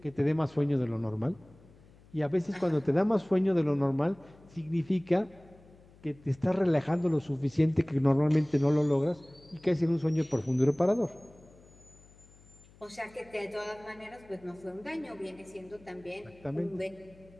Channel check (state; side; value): noise; left; hum, 25 dB below the sound